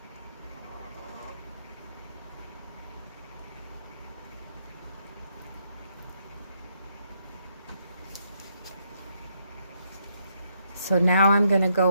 So now I'm going to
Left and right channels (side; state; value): both; inverted; correlation -0.75